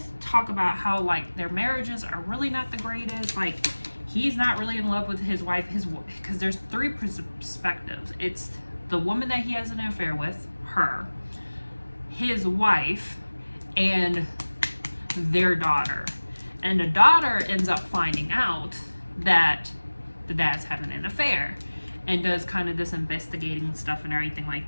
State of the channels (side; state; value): both; inverted; correlation -1.00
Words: talk about how like their marriages are really not the greatest. Like he's not really in love with his wife, because there's three perspectives. It's the woman that he has an affair with, her, his wife, and their daughter. And the daughter ends up finding out that the dad's having an affair, and does kind of this investigating stuff and everything like